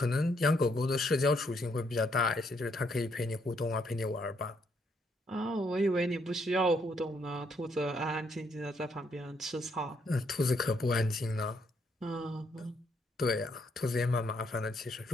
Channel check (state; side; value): normal; both; correlation 0.73